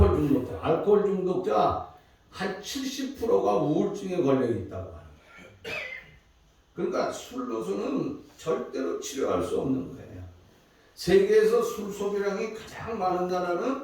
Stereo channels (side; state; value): both; identical; correlation 1.00